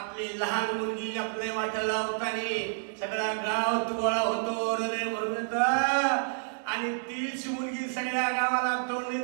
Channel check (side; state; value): left; silent; digital silence